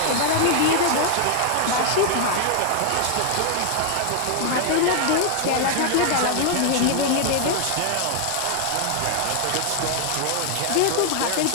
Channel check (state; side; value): different; both; correlation 0.00